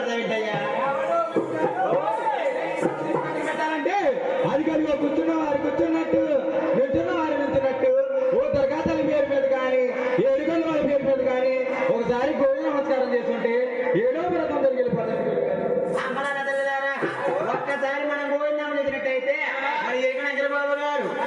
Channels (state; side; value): identical; both; correlation 1.00